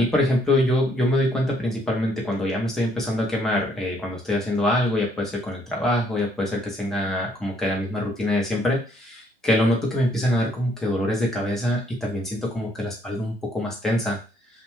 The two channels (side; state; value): both; normal; correlation 0.67